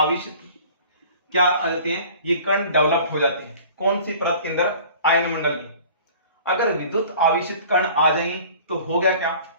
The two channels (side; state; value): both; inverted; correlation -0.46